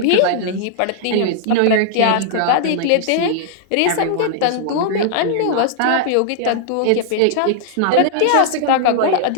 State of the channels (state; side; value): different; both; correlation -0.01